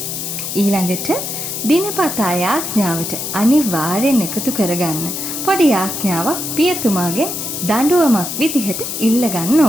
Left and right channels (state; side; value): noise; left; hiss, 5 dB below the sound